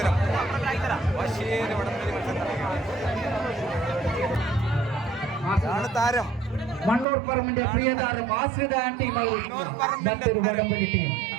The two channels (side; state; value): left; drops out; at 7.1 s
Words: വാശിയേറിയ വടംവലി മത്സരം നടക്കുകയാണ്. താരം മണ്ണൂർ പറമ്പിന്റെ പ്രിയതാരം ആശ്രിത ടീം മറ്റൊരു വടംവലി ടീം.